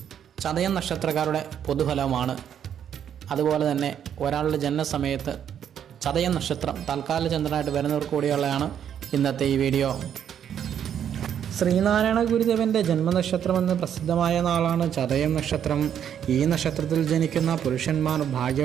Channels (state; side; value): quieter; left; 9.1 dB